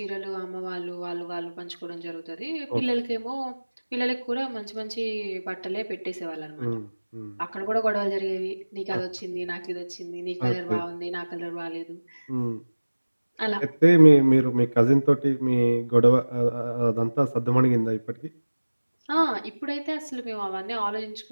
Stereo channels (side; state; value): both; inverted; correlation -1.00